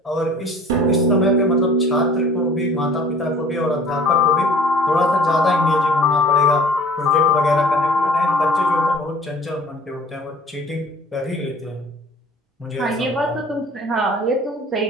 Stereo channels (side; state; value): both; normal; correlation 0.49